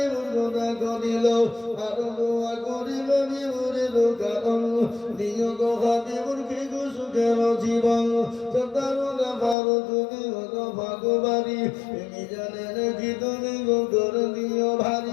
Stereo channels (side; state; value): right; drops out; at 9.6 s